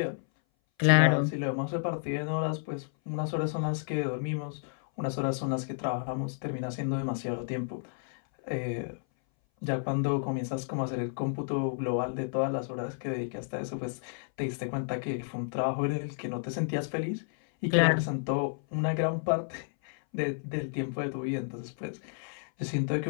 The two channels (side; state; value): right; silent; 57 dB below the other